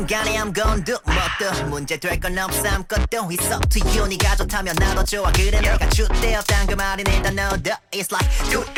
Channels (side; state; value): both; identical; correlation 1.00